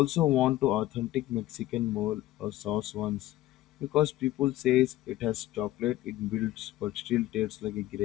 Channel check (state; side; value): quieter; right; 15.2 dB